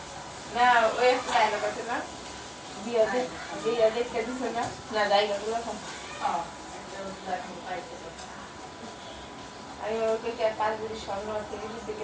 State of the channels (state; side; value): identical; both; correlation 1.00